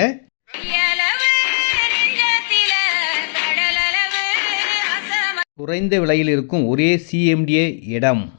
குறைந்த விலையில் இருக்கும் ஒரே சிஎம்டிஏ இடம்.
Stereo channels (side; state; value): right; silent; digital silence